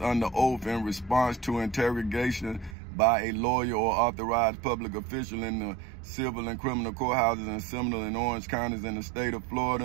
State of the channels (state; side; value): drops out; left; at 2.8 s